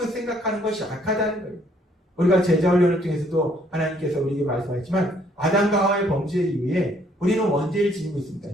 생각하는 것이 악하다는 거예요. 우리가 제자훈련을 통해서도 하나님께서 우리에게 말씀하셨지만 아담과 하와의 범죄 이후에 우리는 원죄를 지니고 있습니다.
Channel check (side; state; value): both; normal; correlation 0.65